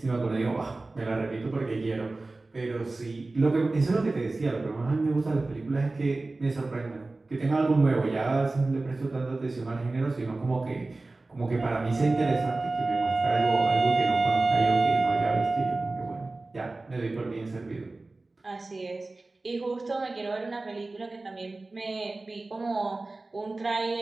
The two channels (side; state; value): left; quieter; 3.2 dB